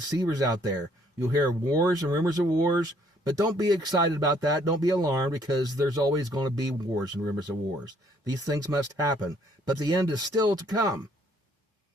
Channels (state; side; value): normal; both; correlation 0.64